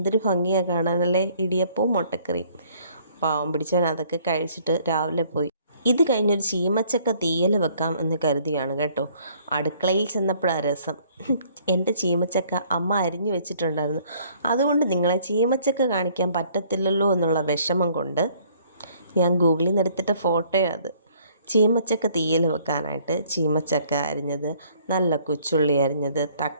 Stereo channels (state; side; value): inverted; both; correlation -0.60